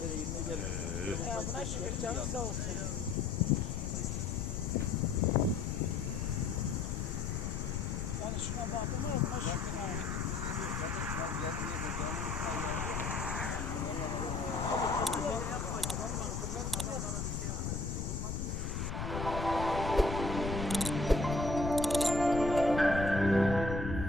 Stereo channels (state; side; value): noise; left; rumble, 3 dB below the sound